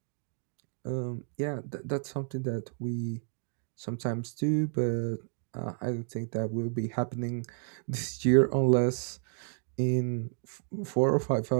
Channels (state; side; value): silent; left; 57 dB below the other